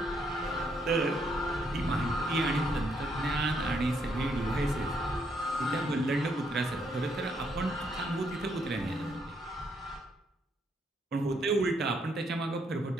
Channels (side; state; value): both; normal; correlation 0.73